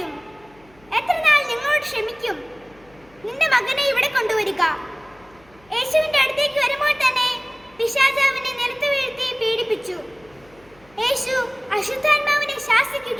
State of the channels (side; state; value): left; noise; hum, 29 dB below the sound